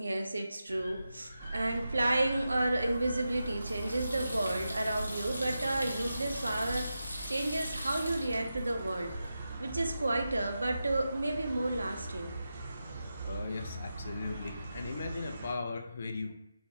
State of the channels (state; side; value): inverted; both; correlation -0.90